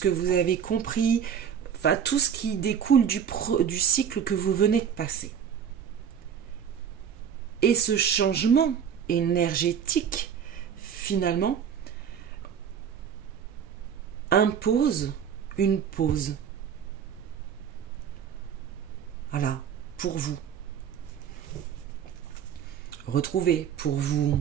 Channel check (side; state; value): left; quieter; 8.1 dB